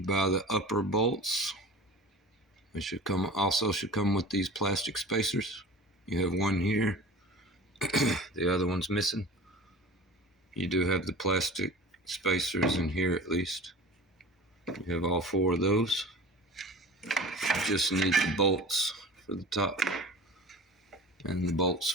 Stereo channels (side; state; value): both; normal; correlation 0.38